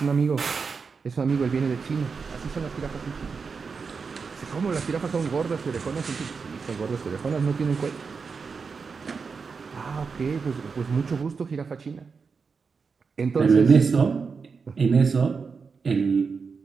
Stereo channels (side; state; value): left; quieter; 5.2 dB